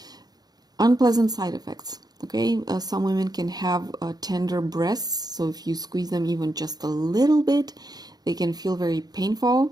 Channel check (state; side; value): late; left; 0.19 ms